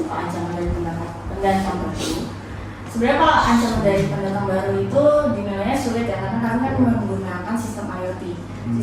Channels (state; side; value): identical; both; correlation 1.00